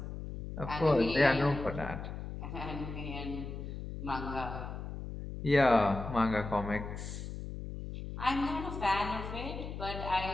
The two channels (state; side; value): noise; left; hum, 7 dB below the sound